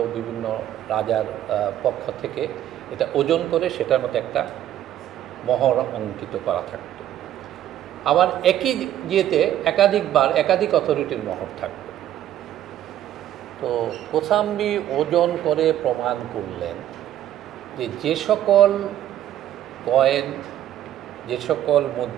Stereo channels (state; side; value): quieter; left; 12.0 dB